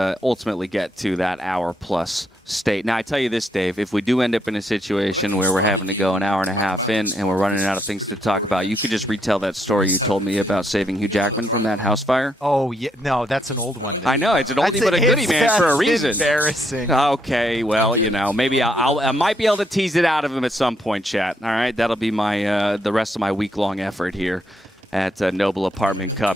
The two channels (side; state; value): both; normal; correlation 0.75